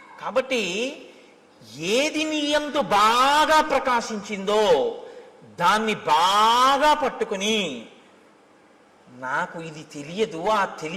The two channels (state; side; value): identical; both; correlation 1.00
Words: కాబట్టి ఏది నీ యందు బాగా ప్రకాశించిందో దాన్ని బాగా పట్టుకుని నాకు ఇది తెలియదు, ఆ